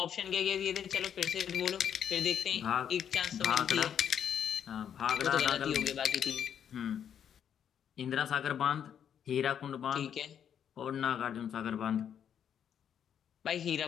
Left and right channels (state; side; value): quieter; right; 8.7 dB